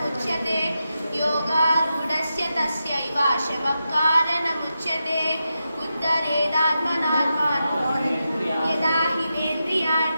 योगारूढस्य तस्यैव शमः कारणमुच्यते उद्धरेदात्मनात्मानं यदा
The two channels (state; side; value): inverted; both; correlation -0.88